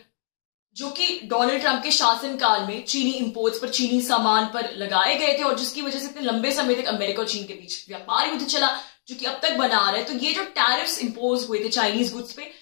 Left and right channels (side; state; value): right; silent; 63 dB below the other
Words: जो कि डोनाल्ड ट्रंप के शासनकाल में चीनी इंपोर्ट्स पर, चीनी सामान पर लगाए गए थे और जिसकी वजह से इतने लंबे समय तक अमेरिका और चीन के बीच व्यापार युद्ध चला। जो कि अब तक बना रहा है। तो ये जो टैरिफ्स इंपोज हुए थे चाइनीज गुड्स पे,